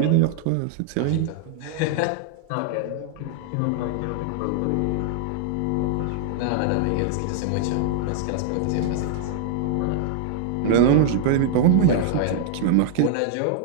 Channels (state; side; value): different; both; correlation -0.01